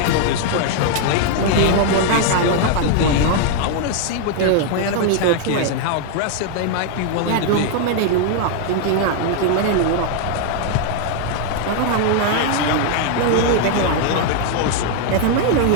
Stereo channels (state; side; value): different; both; correlation 0.00